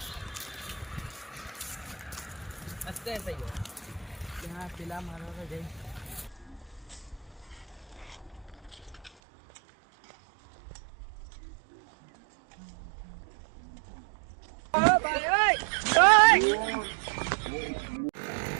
અત્યારે થઈ ગયો ત્યાં પેલા મારવા જઈ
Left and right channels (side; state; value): left; drops out; at 9.1 s